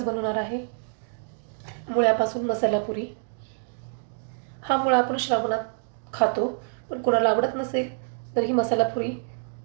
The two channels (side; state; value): left; silent; digital silence